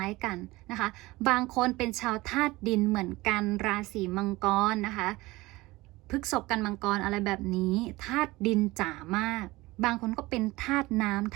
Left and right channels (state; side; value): quieter; left; 20.3 dB